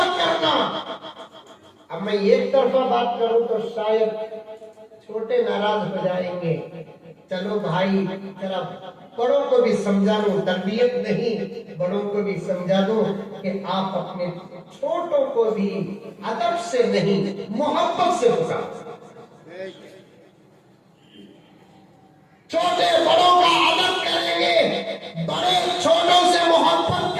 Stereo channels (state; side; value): identical; both; correlation 1.00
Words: کرنا. اب میں ایک طرفہ بات کروں تو شاید چھوٹے ناراض ہو جائیں گے. چلو بھائی ذرا بڑوں کو بھی سمجھا دو, تربیت نہیں, بڑوں کو بھی سمجھا دو کہ آپ اپنے چھوٹوں کو بھی ادب سے نہیں محبت سے پکارو. چھوٹے بڑوں کا ادب کریں گے, بڑے چھوٹوں سے محبت